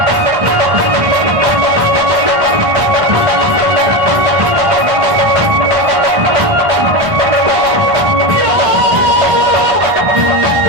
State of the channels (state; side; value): late; left; 1.6 ms